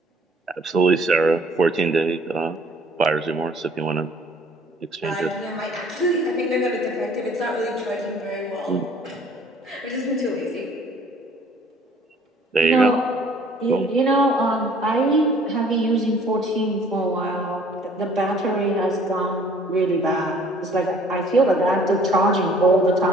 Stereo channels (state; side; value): normal; both; correlation 0.56